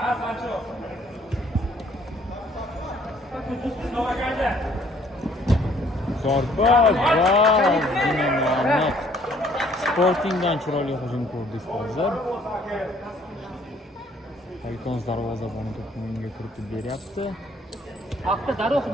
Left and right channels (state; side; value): normal; both; correlation 0.61